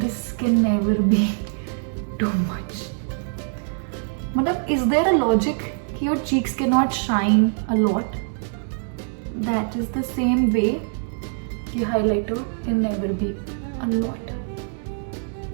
can never be too much. Matlab, is there a logic that your cheeks cannot shine a lot? That is the same way the highlighter can never be a lot.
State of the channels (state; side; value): silent; left; 63 dB below the other